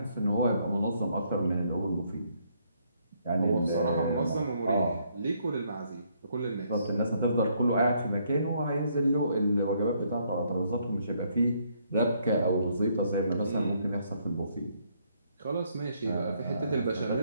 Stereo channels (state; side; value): inverted; both; correlation -0.70